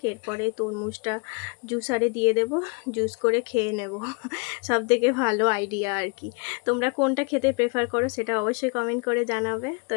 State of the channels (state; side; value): quieter; right; 33.9 dB